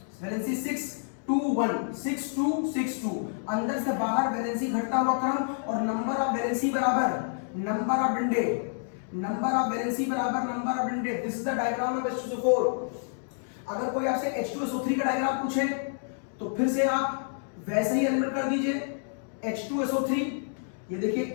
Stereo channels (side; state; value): right; silent; digital silence